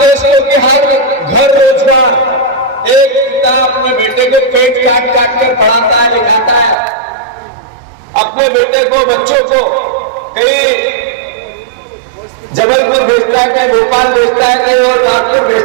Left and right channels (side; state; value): left; drops out; at 6.8 s